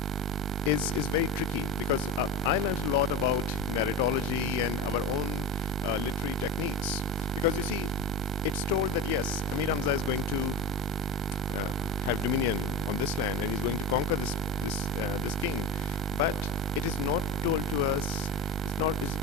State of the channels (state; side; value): normal; both; correlation 0.26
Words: is very tricky, because I learned a lot about narratology and our own literary techniques. Because you see, it's told that yes, Amir Hamza is going to have dominion on this land, and he's going to conquer this king. But it is not told to us.